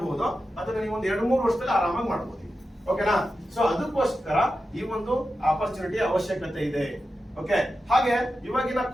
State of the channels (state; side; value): normal; both; correlation 0.91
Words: ಅದನ್ನ ನೀವು ಒಂದು 2-3 ವರ್ಷದಲ್ಲಿ ಆರಾಮಾಗಿ ಮಾಡಬಹುದು. ಓಕೆನಾ? ಸೊ ಅದಕ್ಕೋಸ್ಕರ ಈ ಒಂದು ಆಪರ್ಚುನಿಟಿ ಅವಶ್ಯಕತೆ ಇದೆ. ಓಕೆ, ಹಾಗೆ ಇವಾಗಿನ